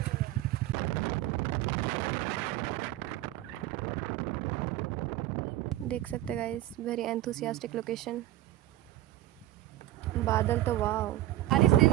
देख सकते गाइस, वेरी एंथुसियास्टिक लोकेशन। बादल तो वाह, बारिश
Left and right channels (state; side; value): quieter; left; 15.3 dB